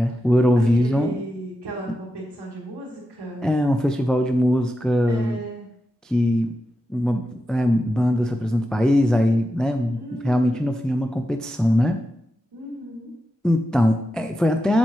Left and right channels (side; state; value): both; normal; correlation 0.90